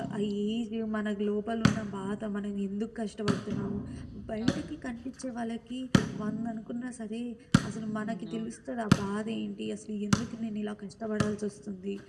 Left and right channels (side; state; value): both; identical; correlation 1.00